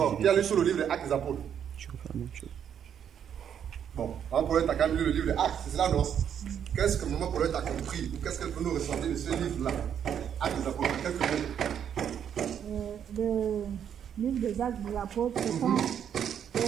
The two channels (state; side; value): quieter; left; 8.7 dB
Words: Qui a lu tout le livre des Actes des Apôtres? Bon, Maman Paulette a quand même lu le livre des Actes, c'est cela, non? Qu'est-ce que Maman Paulette a compris? Ou qu'est-ce qu'elle peut nous ressentir de ce livre-là? Actes des Apôtres, quelques mots. Le livre des Actes des Apôtres, ce sont